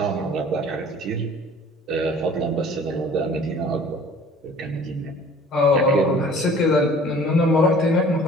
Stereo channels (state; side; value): normal; both; correlation 0.49